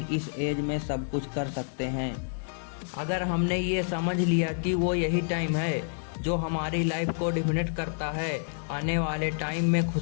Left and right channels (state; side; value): silent; right; 57 dB below the other